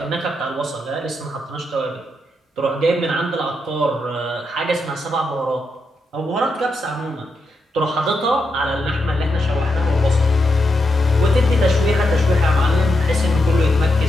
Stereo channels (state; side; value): normal; both; correlation 0.84